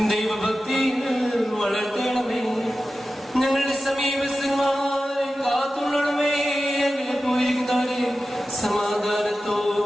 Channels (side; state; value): both; normal; correlation 0.93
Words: ദൈവഭക്തിയിൽ വളർത്തണമേ. ഞങ്ങളുടെ സമീപസ്ഥന്മാരെ കാത്തുകൊള്ളണമേ. അങ്ങനെ പോയിരിക്കുന്നവരെ